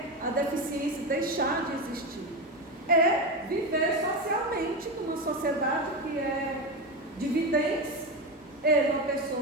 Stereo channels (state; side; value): normal; both; correlation 0.16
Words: a deficiência deixar de existir, é viver socialmente numa sociedade que é de videntes. Ele é uma pessoa